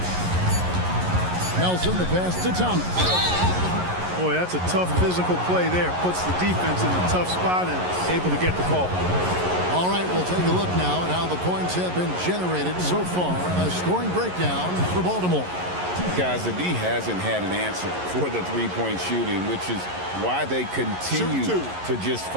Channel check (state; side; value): late; left; 11 ms